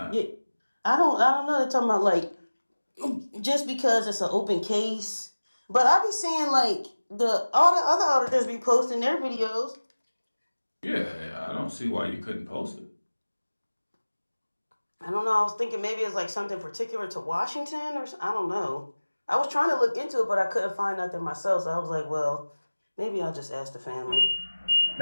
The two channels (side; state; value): both; inverted; correlation -1.00